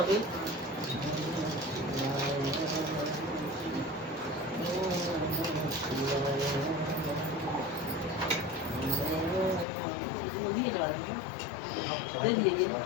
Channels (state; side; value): drops out; right; at 9.7 s